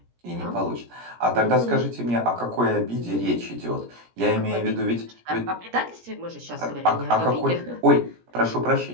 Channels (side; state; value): left; late; 17 ms